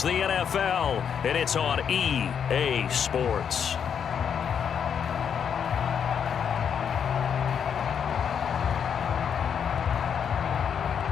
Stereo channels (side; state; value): right; quieter; 7.7 dB